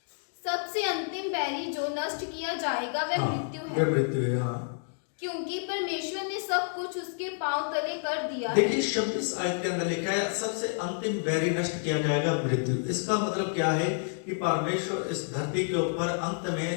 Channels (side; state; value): right; silent; digital silence